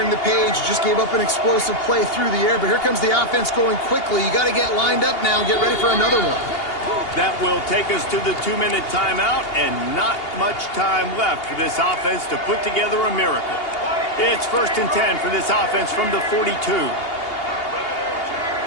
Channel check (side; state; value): right; late; 2.8 ms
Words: the page. You just gave up an explosive play through the air, but here comes the offense going quickly. You got to get lined up now and get ready for another one. That will take us to the 2-minute timeout, and not much time left for this offense to put together a miracle. It's 1st and 10 for this offense from the 42.